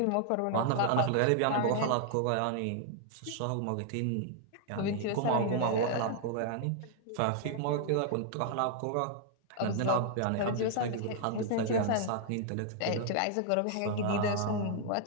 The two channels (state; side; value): different; both; correlation -0.01